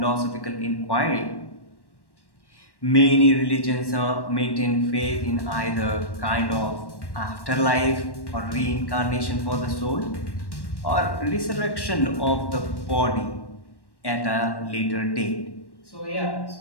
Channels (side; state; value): right; late; 1.1 ms